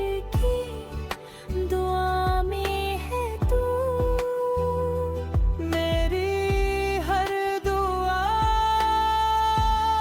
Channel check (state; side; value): identical; both; correlation 1.00